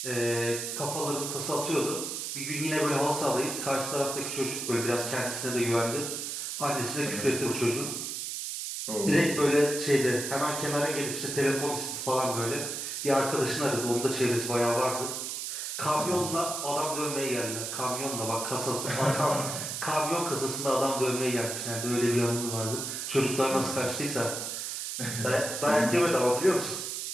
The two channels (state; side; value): noise; right; hiss, 4 dB below the sound